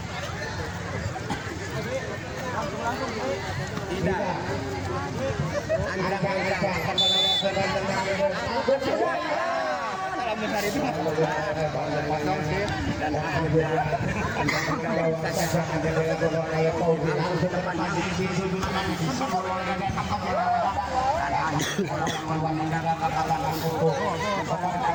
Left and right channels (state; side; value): identical; both; correlation 1.00